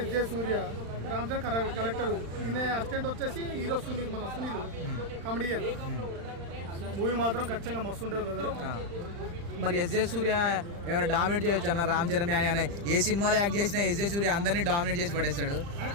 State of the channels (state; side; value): late; left; 35 ms